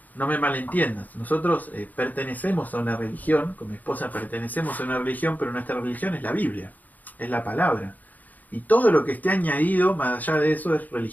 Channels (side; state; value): right; late; 0.081 ms